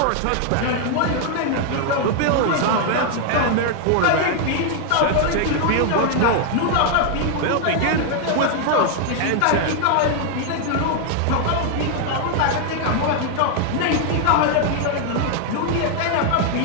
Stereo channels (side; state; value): both; different; correlation 0.00